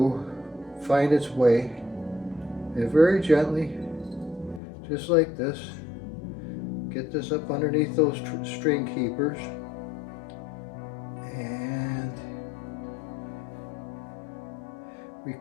find its way, and very gently, just like this, get this up underneath those string keepers. And we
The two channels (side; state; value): right; drops out; at 4.6 s